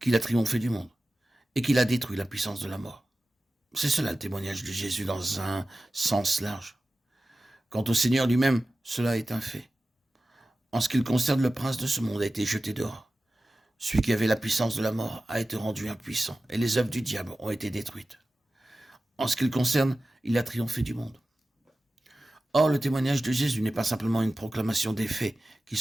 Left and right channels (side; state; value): both; normal; correlation 0.95